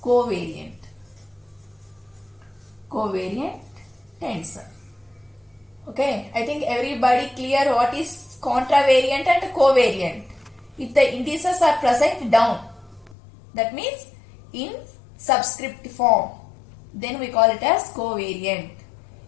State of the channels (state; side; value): drops out; right; at 13.2 s